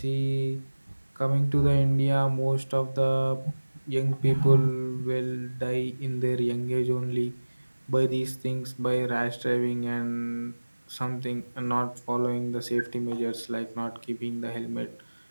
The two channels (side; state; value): both; inverted; correlation -1.00